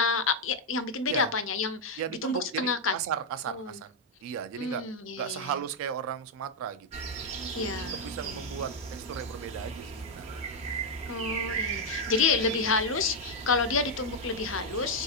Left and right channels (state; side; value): normal; both; correlation 0.01